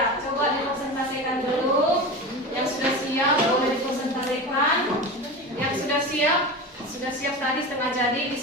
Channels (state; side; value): normal; both; correlation 0.27